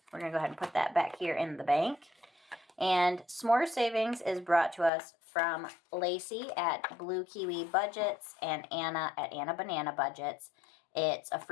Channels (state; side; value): drops out; right; at 4.9 s